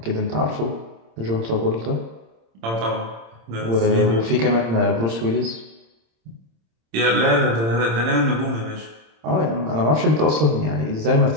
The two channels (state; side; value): late; left; 26 ms